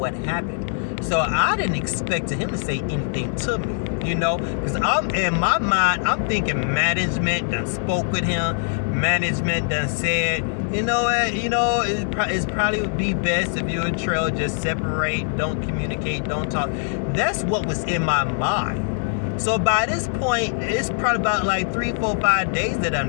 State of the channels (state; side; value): silent; right; digital silence